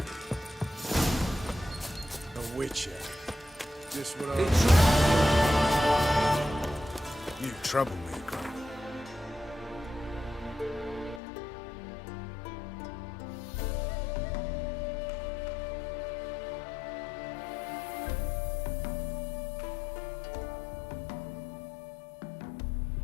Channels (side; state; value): right; drops out; at 11.2 s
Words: A witcher. Just what You troublemaker.